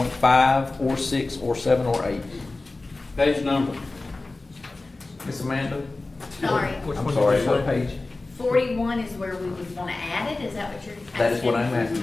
or 6, or 7, or 8. Page number. Miss Amanda? Sorry, I'm sorry, what page? 41 is where we would want to add it, is that what you're asking? That is what I'm asking,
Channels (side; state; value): right; quieter; 3.2 dB